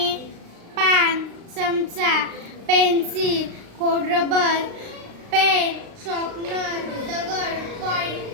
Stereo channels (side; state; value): left; late; 35 ms